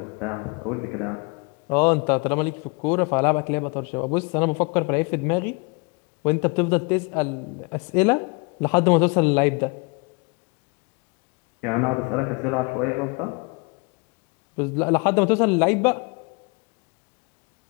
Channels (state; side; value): quieter; right; 31.8 dB